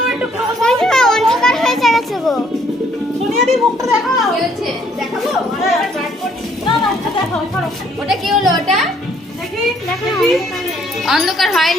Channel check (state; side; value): normal; both; correlation 0.65